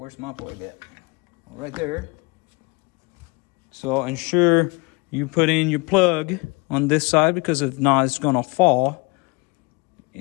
my plug at? Right there. So ensure you put in your plug on this side, because if not, it's going to fall.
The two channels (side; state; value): right; quieter; 28.6 dB